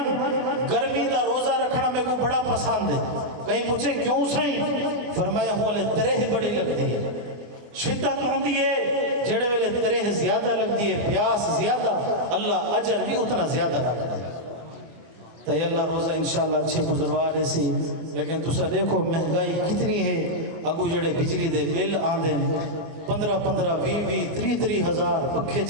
گرمی دا روزہ رکھنا میں کو بڑا پسند ہے کہیں پوچھے کیوں سائیں فرمائے ہولے ترہ بڑی لگ دیئے شدت ہوں دیئے جڑے ویلے ترہ زیادہ لگ دیئے پیاس زیادہ اللہ اجر بھی اتنا زیادہ لگ دیئے تو یہ اللہ روزہ انشاءاللہ اچھے گزروا رہے سی لیکن تُسا دیکھو مہنگائی کتنی ہے اگو جڑے بجلی دے بل آندے 15 20 ہزار پکھے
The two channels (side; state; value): left; late; 25 ms